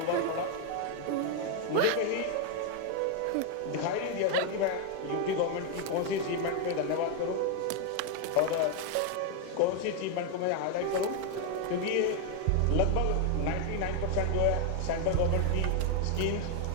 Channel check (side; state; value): both; different; correlation 0.01